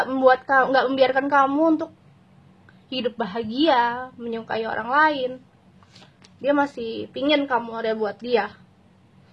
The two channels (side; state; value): both; identical; correlation 1.00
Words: membiarkan kamu untuk hidup bahagia, menyukai orang lain. Dia masih pingin kamu ada buat dia,